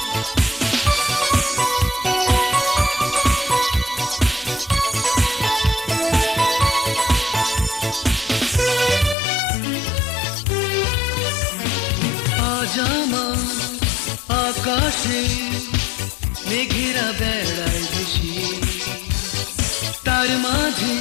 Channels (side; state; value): right; drops out; at 9.2 s